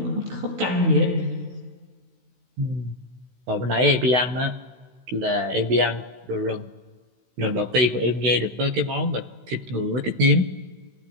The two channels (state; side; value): late; left; 16 ms